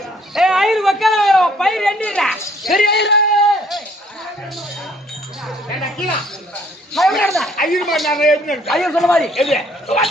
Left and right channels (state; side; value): normal; both; correlation 0.62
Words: ஐயர் வக்கல பயிர் எண்ணிடா பெரிய ஐயர் சொன்ன மாதிரி